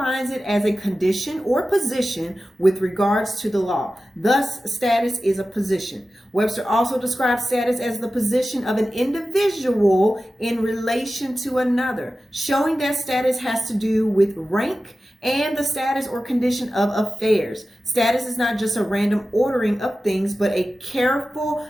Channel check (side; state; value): both; normal; correlation 0.94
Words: it as a condition or position with regards to the law. Thus, status is a position. Webster also describes status as the position of an individual in relation to another, showing that status has to do with rank and the status or condition of affairs. Status is not just a random ordering of things, but a careful